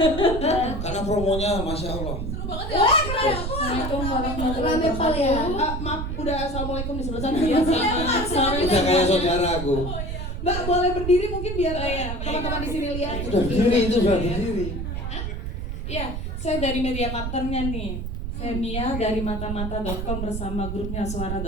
Karena promonya Masya Allah. Seru banget ya. Assalamualaikum warahmatullahi wabarakatuh. Maaf, udah assalamualaikum di sebelah sana. Sorry. Udah kayak saudara aku. Mbak boleh berdiri mungkin biar teman-teman di sini lihat. Udah berdiri. Iya, saya dari media partnernya nih. Saya Mia dari matamata.com bersama grupnya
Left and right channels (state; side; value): noise; right; rumble, 4 dB below the sound